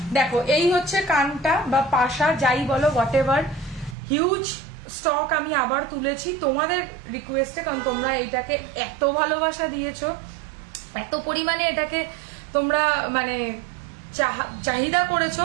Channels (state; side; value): drops out; left; at 4.0 s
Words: দেখো, এই হচ্ছে কানটা বা পাশা, যাই বলো, হোয়াট এভার। হিউজ স্টক আমি আবার তুলেছি তোমাদের রিকোয়েস্টে, কারণ তোমরা এইটাকে এত ভালোবাসা দিয়েছো, এত পরিমাণে এটাকে তোমরা মানে চাহিদা